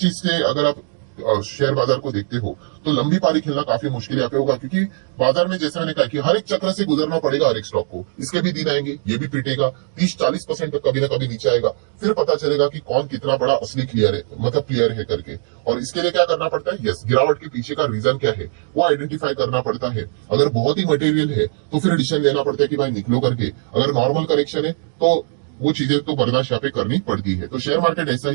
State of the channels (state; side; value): silent; left; digital silence